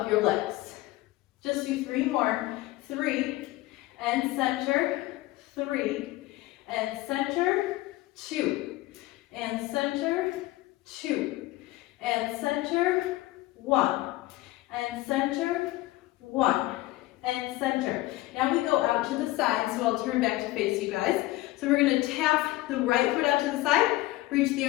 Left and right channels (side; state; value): right; quieter; 18.1 dB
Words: your legs. Just do 3 more. 3 and center. 3 and center. 2 and center. 2 and center. 1 and center. 1 and center. Now we go out to the side, so I'll turn back to face you guys. So we're going to tap the right foot out to the side, reach the